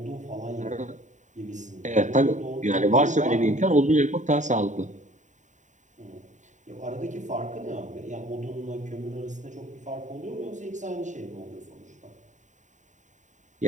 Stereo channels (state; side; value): late; left; 0.36 ms